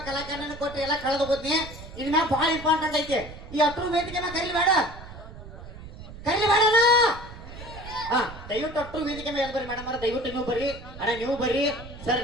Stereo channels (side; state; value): right; noise; rumble, 14 dB below the sound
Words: ಕಲಾಕಾರನ ಕೊಟ್ರಿ, ಎಲ್ಲ ಕಳೆದು ಹೋದ್ನಿ. ಇದ್ ಮ್ಯಾಗ ಭಾಳ ಇಂಪಾರ್ಟೆಂಟ್ ಐತಿ. ಈ ಹತ್ರ ವೇದಿಕೆ ಮ್ಯಾಗ ಕರೀಲಿ ಬೇಡ ಹಾ ದಯವಿಟ್ಟು ಅಟ್ರು ವೇದಿಕೆ ಮೇಲೆ ಬರ್ರಿ ಮೇಡಮ್. ದಯವಿಟ್ಟು ನೀವು ಬರ್ರಿ, ಅಣ್ಣ ನೀವು ಬರ್ರಿ, ಸರ್